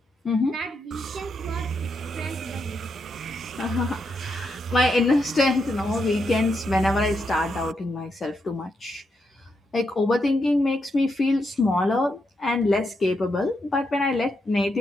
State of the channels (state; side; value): normal; both; correlation 0.82